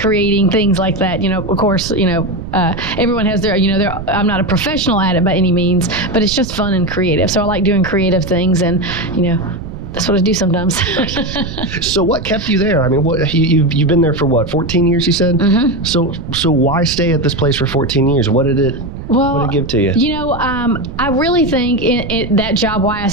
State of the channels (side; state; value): right; noise; rumble, 10 dB below the sound